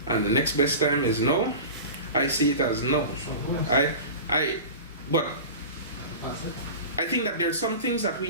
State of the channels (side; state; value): both; inverted; correlation -0.33